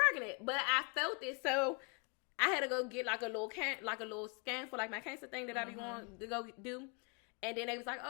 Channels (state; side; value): quieter; right; 35.0 dB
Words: pregnant, but I felt it, so I had to go get like a little scan for like my cancer thing that I be going to go do. And then they was like,